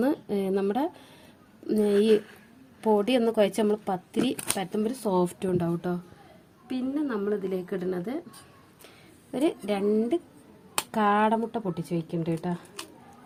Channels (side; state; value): both; identical; correlation 1.00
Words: നമ്മുടെ ഈ പൊടി ഒന്ന് കുഴച്ച് നമ്മൾ പത്തിരി പരത്തുമ്പോൾ ഒരു സോഫ്റ്റും ഉണ്ടാവും കേട്ടോ. പിന്നെ നമ്മൾ ഇതിലേക്ക് ഇടുന്നത് ഒരു 2 കാടമുട്ട പൊട്ടിച്ച് വയ്ക്കുന്നുണ്ട് കേട്ടോ.